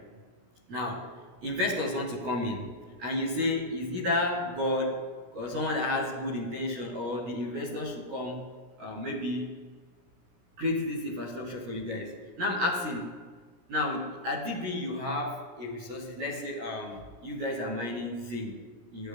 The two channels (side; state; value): left; late; 17 ms